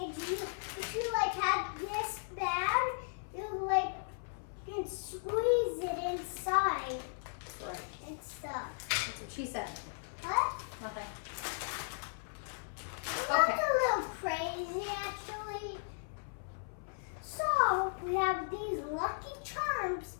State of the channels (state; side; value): silent; right; 54 dB below the other